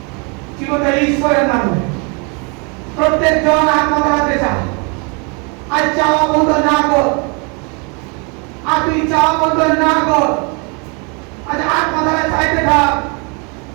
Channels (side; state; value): left; quieter; 33.3 dB